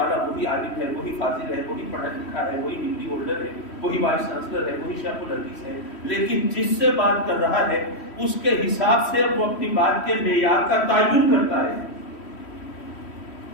وہی عالم ہے، وہی فاضل ہے، وہی پڑھا لکھا ہے، وہی ڈگری ہولڈر ہے، وہی وائس چانسلر ہے، وہی شیخ الحدیث ہے، لیکن جس سے بات کر رہا ہے اس کے حساب سے وہ اپنی بات کے معیار کا تعین کرتا ہے۔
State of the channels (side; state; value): right; late; 3.1 ms